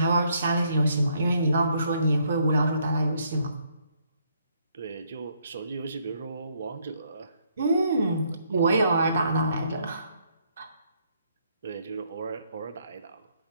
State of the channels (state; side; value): inverted; both; correlation -0.70